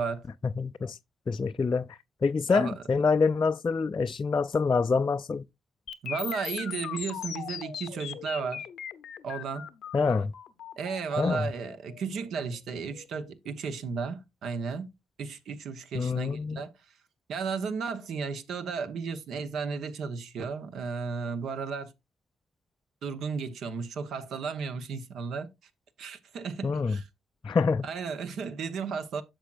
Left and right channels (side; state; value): both; normal; correlation 0.79